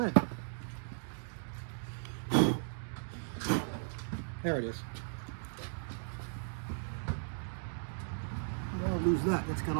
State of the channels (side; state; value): left; silent; digital silence